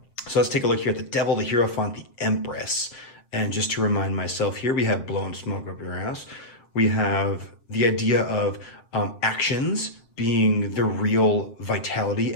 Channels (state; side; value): late; right; 7.6 ms